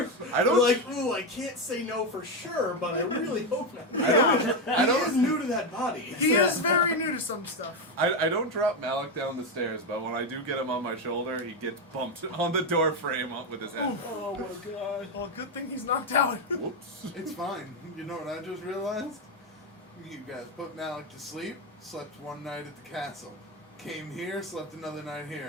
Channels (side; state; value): both; normal; correlation 0.09